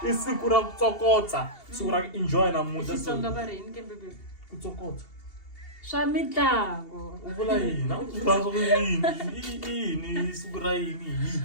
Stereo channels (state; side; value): late; right; 2.8 ms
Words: i siku ra ku tsokotsa. Siku ra ku enjoy namuntlha. Xitsonga va rini ke bebe? Ku tsokotsa. Swa mitlangu. U vula yini? U vula yini? Siku ra yini?